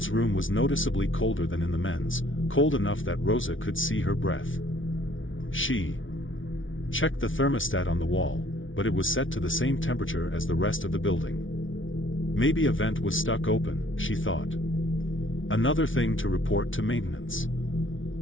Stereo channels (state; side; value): late; right; 0.57 ms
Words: room was noticeably colder than in the men's, cold enough that Rosa could see her breath. She checked the thermostat on the wall, but it was set to the same temperature as the rest of the building. Maybe a vent was stuck open, she thought. Another thing to report to maintenance.